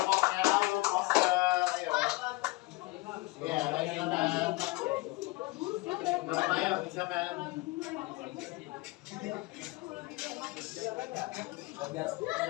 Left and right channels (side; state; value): right; quieter; 22.6 dB